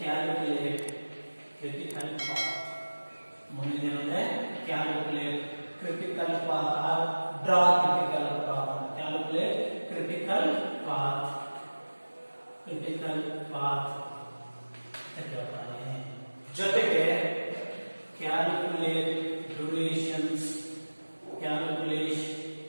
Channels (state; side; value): inverted; both; correlation -1.00